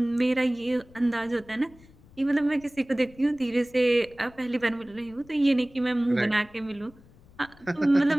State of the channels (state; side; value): noise; left; rumble, 25 dB below the sound